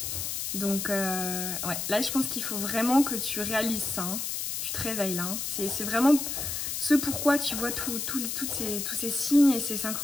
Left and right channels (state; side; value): noise; left; hiss, 3 dB below the sound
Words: Donc, ouais, là, je pense qu'il faut vraiment que tu réalises ça. Hein. Tu te réveilles là. Hein. C'est vraiment ce pourquoi tu vois tous ces signes et ces